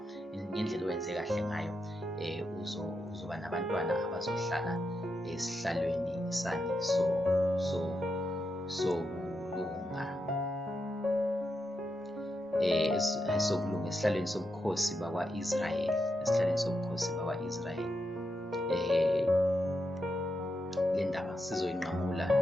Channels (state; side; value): normal; both; correlation 0.85